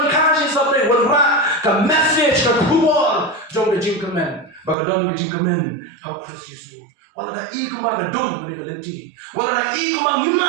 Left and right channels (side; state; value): left; drops out; at 4.8 s